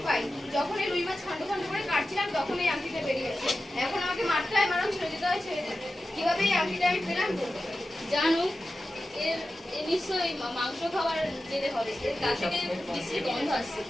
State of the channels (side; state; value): both; normal; correlation 0.93